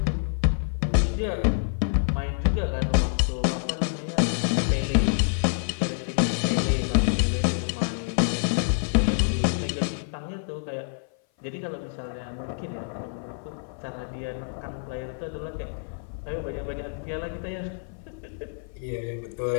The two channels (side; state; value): right; silent; 57 dB below the other